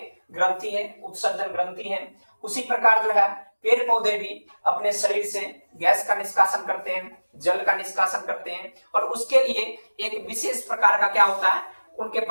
ग्रंथि है, उत्सर्जन ग्रंथि है। उसी प्रकार जो है पेड़ पौधे भी अपने शरीर से गैस का निष्कासन करते हैं, जल का निष्कासन करते हैं, और उसके लिए एक विशेष प्रकार का क्या होता है, उनके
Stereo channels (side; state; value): both; inverted; correlation -1.00